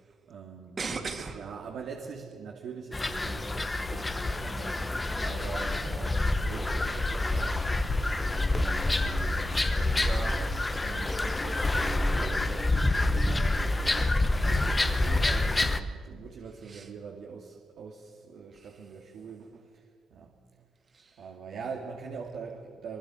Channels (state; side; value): normal; both; correlation 0.94